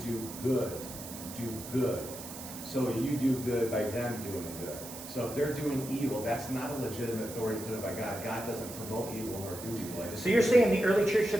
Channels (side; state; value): right; noise; hiss, 12 dB below the sound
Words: good. Do good. So you do good by them doing good. So if they're doing evil, that's not a legitimate authority put by God. God doesn't promote evil nor do evil. So you're saying the early church should